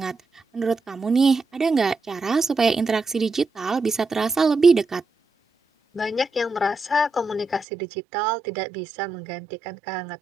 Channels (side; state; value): left; drops out; at 7.7 s